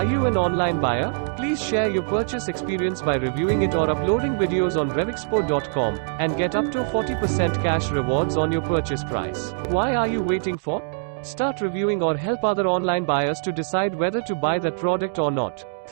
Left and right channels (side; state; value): left; silent; digital silence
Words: you an online buyer? Please share your purchase experience by reviewing it or uploading videos on RevExpo.com and get up to 40% cash rewards on your purchase price. Why are you waiting for? Start reviewing or help other online buyers to decide whether to buy that product or not.